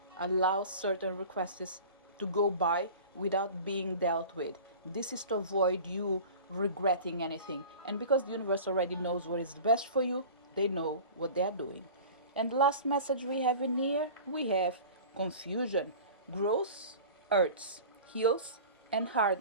allows certain requests to go by without being dealt with. This is to avoid you regretting anything. And because the universe already knows what is best for you, they know what they are doing. And the last message we have in here, we have confusion. Growth hurts, heals, and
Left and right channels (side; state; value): both; inverted; correlation -0.38